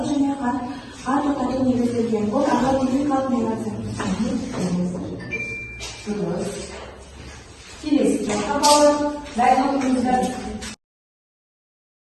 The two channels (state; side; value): identical; both; correlation 1.00